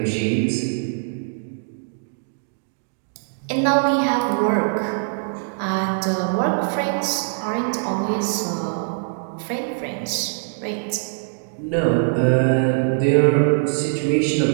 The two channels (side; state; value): left; silent; digital silence